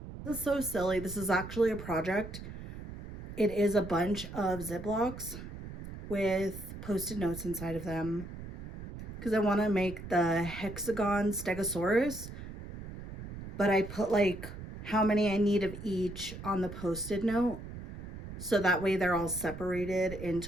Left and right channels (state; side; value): noise; right; rumble, 10 dB below the sound